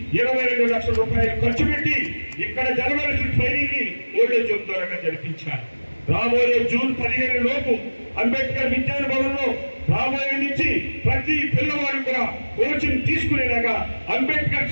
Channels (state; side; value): inverted; both; correlation -1.00